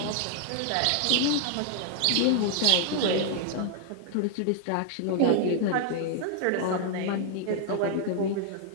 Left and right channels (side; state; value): both; different; correlation 0.00